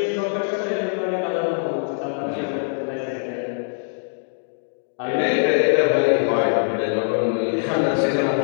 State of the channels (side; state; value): right; silent; digital silence